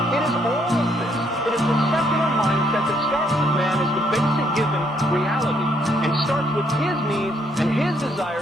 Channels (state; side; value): normal; both; correlation 0.70